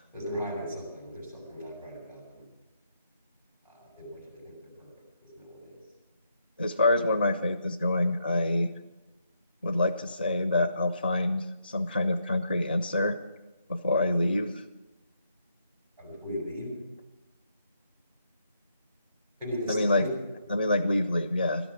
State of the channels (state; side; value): inverted; both; correlation -0.77